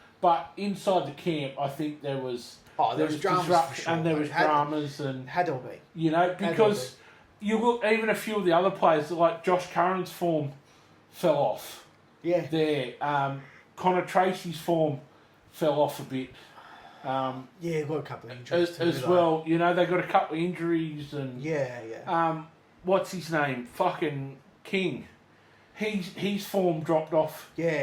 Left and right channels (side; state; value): both; identical; correlation 1.00